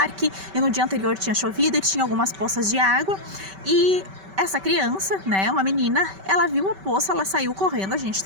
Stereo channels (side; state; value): left; late; 5.2 ms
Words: e no dia anterior tinha chovido e tinha algumas poças de água, e essa criança, né, uma menina, ela viu a poça, ela saiu correndo, a gente